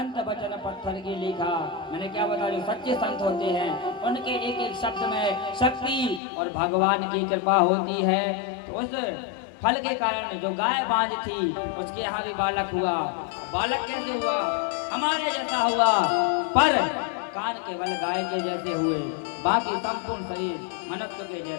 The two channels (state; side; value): drops out; right; at 6.2 s